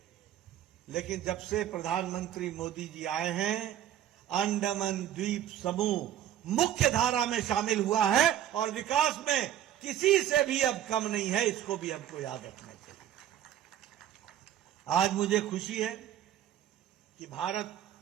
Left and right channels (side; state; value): left; quieter; 11.3 dB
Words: लेकिन जब से प्रधानमंत्री मोदी जी आए हैं, अंडमान द्वीप समूह मुख्य धारा में शामिल हुआ है और विकास में किसी से भी अब कम नहीं है। इसको भी हमको याद रखना चाहिए। आज मुझे खुशी है कि भारत